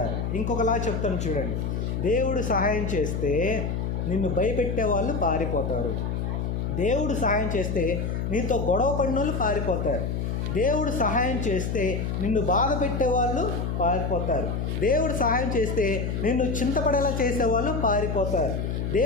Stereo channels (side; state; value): left; noise; hum, 1 dB below the sound